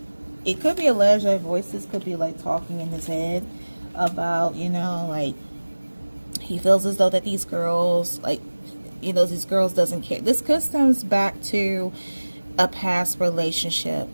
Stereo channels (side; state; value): both; inverted; correlation -1.00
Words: it could be alleged that voices could be like talking in his head about, you know, like he feels as though that these girls, like, you know, these girls doesn't care. This could stems back to a past relationship,